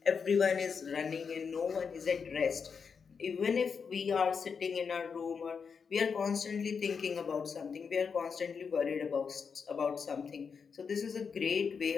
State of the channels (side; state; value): right; quieter; 5.9 dB